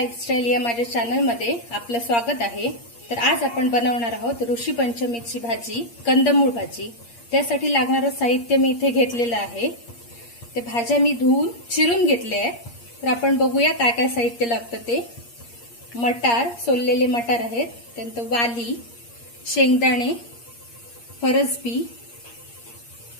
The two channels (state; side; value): late; right; 8.5 ms